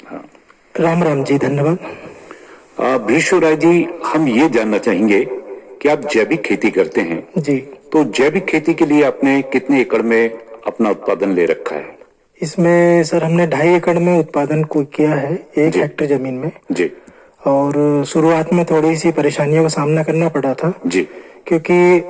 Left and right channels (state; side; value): identical; both; correlation 1.00